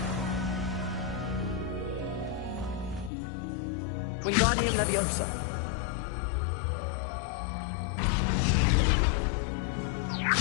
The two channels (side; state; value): right; drops out; at 3.1 s